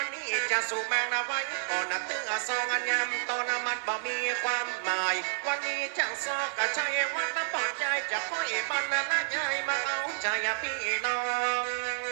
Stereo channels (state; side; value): silent; left; 58 dB below the other